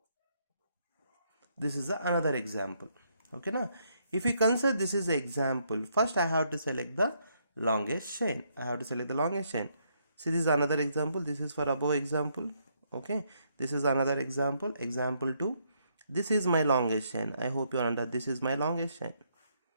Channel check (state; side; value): inverted; both; correlation -0.74